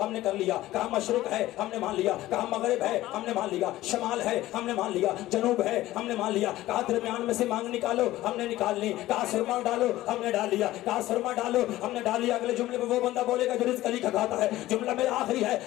हमने कर लिया। कहा मशरिक है, हमने मान लिया। कहा मगरिब है, हमने मान लिया। शमाल है, हमने मान लिया। जनूब है, हमने मान लिया। कहा दरमियान में से मांग निकालो, हमने निकाल ली। कहा सुरमा डालो, हमने डाल लिया। कहा सुरमा डालो, हमने डाल लिया। अगले जुमले में वो बंदा बोलेगा जो रिज़्क़ अली का खाता है। जुमला मेरा आखिरी है,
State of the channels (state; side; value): quieter; right; 15.9 dB